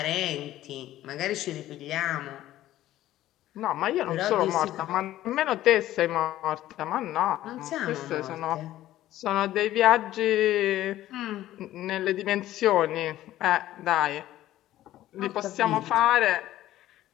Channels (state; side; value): quieter; right; 14.1 dB